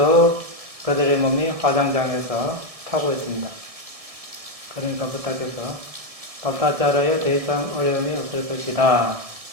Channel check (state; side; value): late; left; 1.7 ms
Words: 그들의 몸이 화장장에서 타고 있습니다. 그러니까 부탁해서 바타자라에 더 이상 어려움이 없을 것이다.